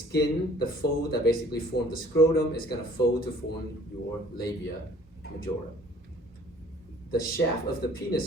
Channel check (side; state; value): both; normal; correlation 0.54